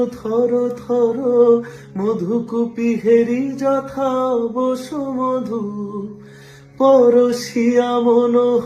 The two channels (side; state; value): both; identical; correlation 1.00